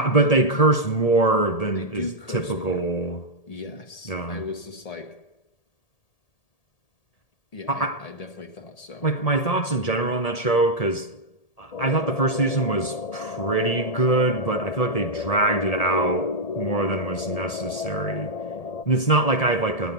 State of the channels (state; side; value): late; right; 1.8 ms